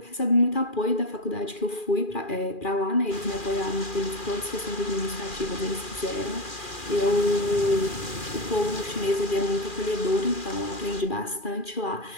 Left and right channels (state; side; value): late; right; 2.4 ms